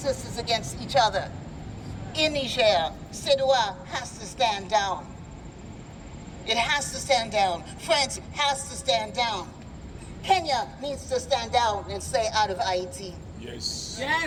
against each other. In Niger, CEDEAO has to stand down. It has to stand down. France has to stand down. Kenya needs to stand down and stay out of Haiti. Yes.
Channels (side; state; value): both; identical; correlation 1.00